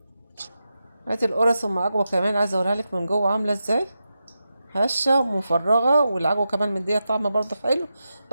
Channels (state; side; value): inverted; both; correlation -0.90